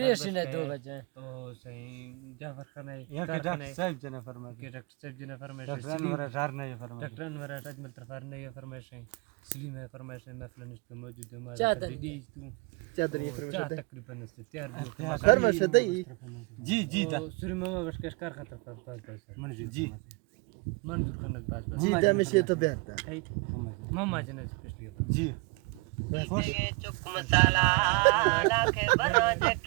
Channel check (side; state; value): left; quieter; 27.5 dB